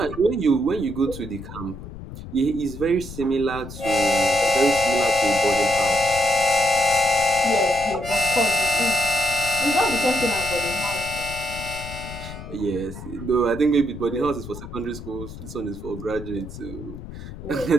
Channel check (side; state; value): left; noise; rumble, 12 dB below the sound